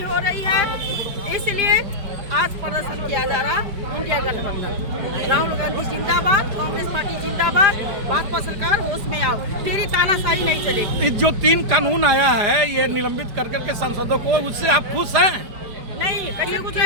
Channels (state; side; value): late; left; 5.0 ms